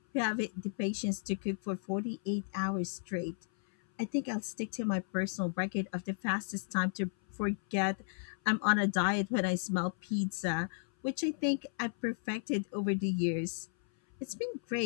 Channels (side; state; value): right; silent; 55 dB below the other